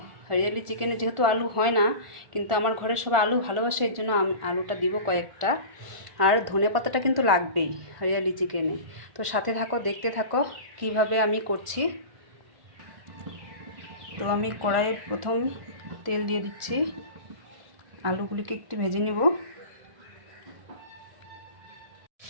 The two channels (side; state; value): left; late; 1.4 ms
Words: হরিয়ালি চিকেনে যেহেতু আলু হয় না, কিন্তু আমার ঘরে সবাই আলু ভালোবাসে, এর জন্য আমি আলুটা দিব কয়েকটা। আর ধনেপাতাটা কিন্তু লাগবেই হরিয়ালি চিকেনে। তো সাথে থাকো, দেখতে থাকো কিভাবে আমি করছি। তো আমি কড়াইয়ে প্রথম তেল দিয়ে দিচ্ছি, আলুগুলিকে একটু ভেজে নেব।